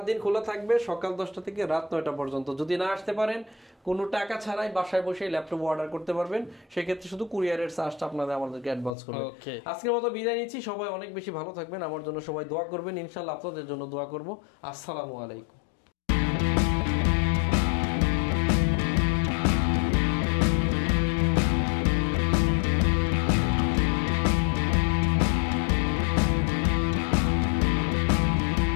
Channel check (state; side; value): drops out; right; at 8.9 s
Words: দিন খোলা থাকবে, সকাল 10টা থেকে রাত 9টা পর্যন্ত। যদি না আসতে পারেন কোনো টাকা ছাড়াই বাসায় বসে ল্যাপটপ অর্ডার করতে পারবেন, সেক্ষেত্রে শুধু কুরিয়ারের চার্জটা আপনাদের আমাদেরকে অ্যাডভান্স করবেন। আজকের মতো বিদায় নিচ্ছি, সবাই অনেক বেশি ভালো থাকবেন, আমার জন্য সবাই দোয়া করবেন, ইনশাআল্লাহ আপনাদের জন্য দোয়া করব। আসসালামু আলাইকুম।